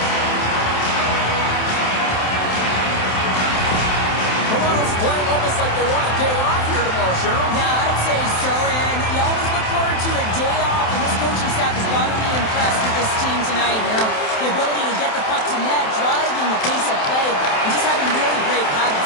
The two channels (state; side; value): late; right; 27 ms